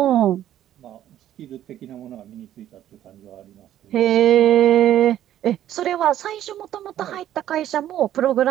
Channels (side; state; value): left; quieter; 11.9 dB